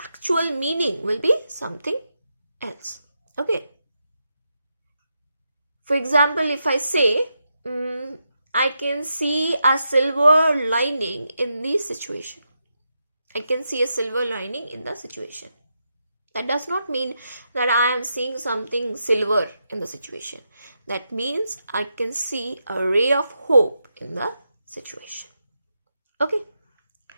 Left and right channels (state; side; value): inverted; both; correlation -0.85